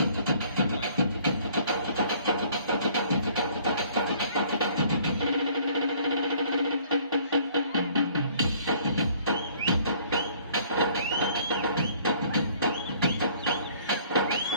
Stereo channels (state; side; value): inverted; both; correlation -0.57